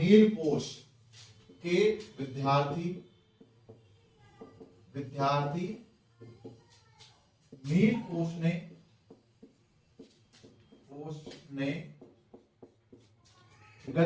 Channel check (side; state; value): both; identical; correlation 1.00